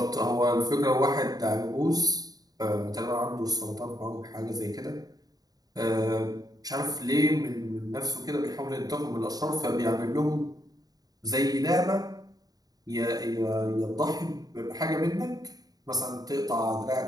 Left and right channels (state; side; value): late; left; 0.18 ms